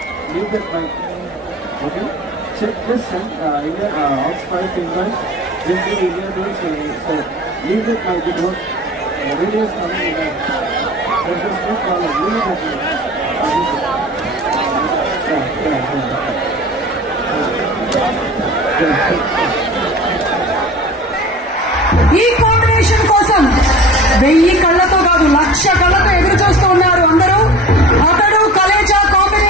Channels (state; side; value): normal; both; correlation 0.39